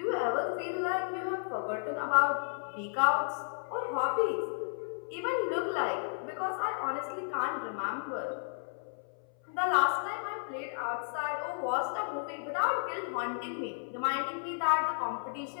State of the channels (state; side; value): silent; right; 56 dB below the other